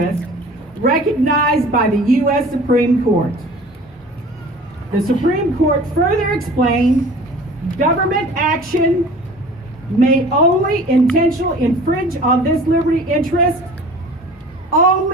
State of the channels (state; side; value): normal; both; correlation 0.44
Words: recognized by the U.S. Supreme Court. The Supreme Court further explained government action may only intentionally infringe on this liberty interest